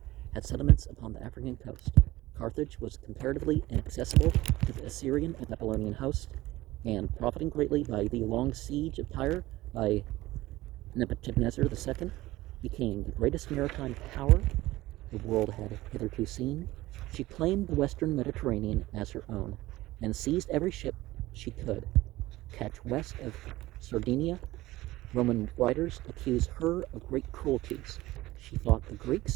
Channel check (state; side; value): quieter; left; 17.8 dB